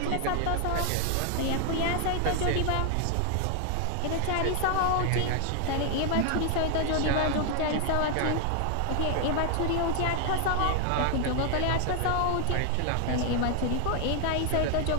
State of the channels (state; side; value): different; both; correlation 0.00